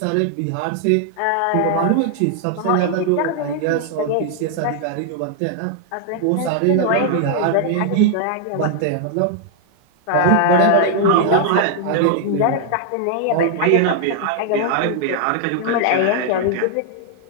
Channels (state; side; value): different; both; correlation 0.00